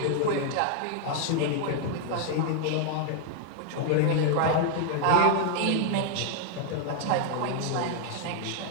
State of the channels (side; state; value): both; different; correlation 0.00